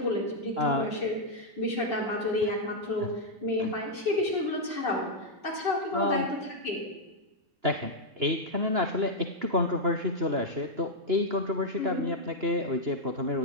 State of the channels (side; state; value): left; late; 2.9 ms